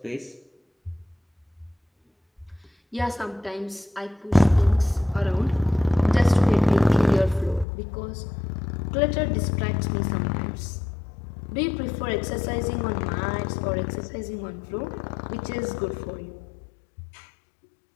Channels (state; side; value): drops out; right; at 7.7 s